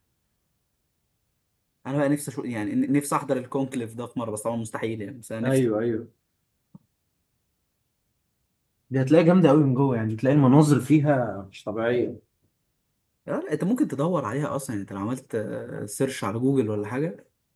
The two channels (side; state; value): both; identical; correlation 1.00